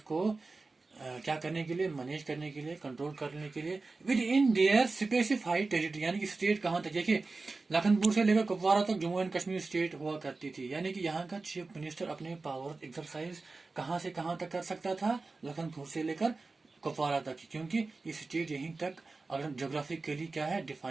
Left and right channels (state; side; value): quieter; left; 3.7 dB